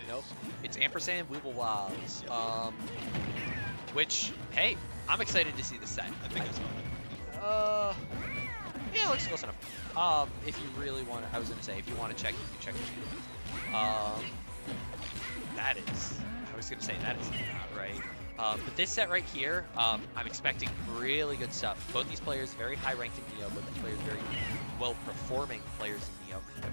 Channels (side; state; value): both; inverted; correlation -1.00